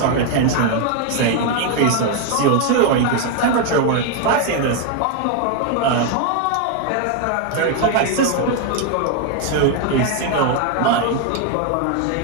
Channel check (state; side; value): different; both; correlation 0.01